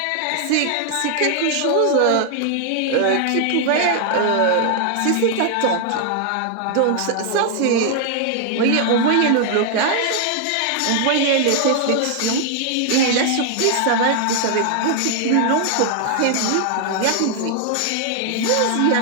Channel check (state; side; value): different; both; correlation 0.00